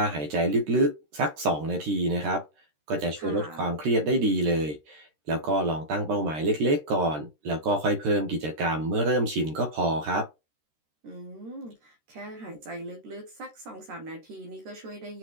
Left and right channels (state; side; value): late; left; 13 ms